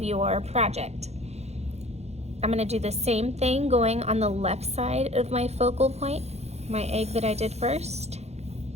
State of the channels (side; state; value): left; late; 0.31 ms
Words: your project. I'm going to do the same thing going on the left side of my focal point, my egg that I did first.